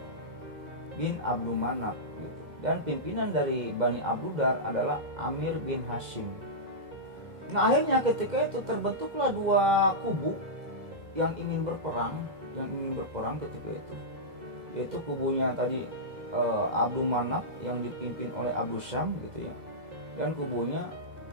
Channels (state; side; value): late; left; 2.1 ms